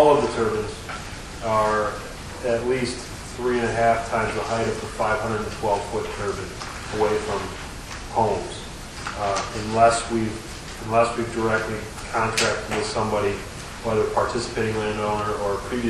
of the turbines are at least 3.5 times the height of the 512-foot turbine away from homes, unless we've directly contracted with somebody, whether participating landowner or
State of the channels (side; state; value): both; identical; correlation 1.00